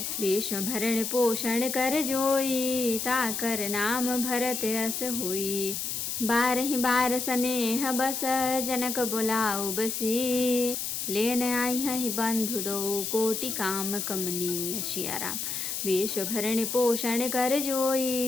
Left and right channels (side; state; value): left; noise; hiss, 3 dB below the sound